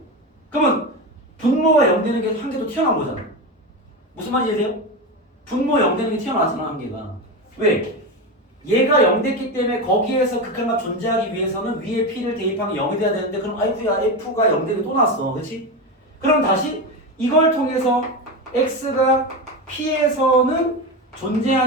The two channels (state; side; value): normal; both; correlation 0.18